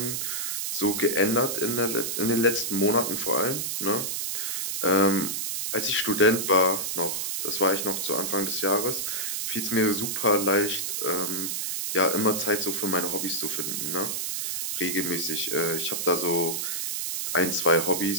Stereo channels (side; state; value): right; noise; hiss, 2 dB below the sound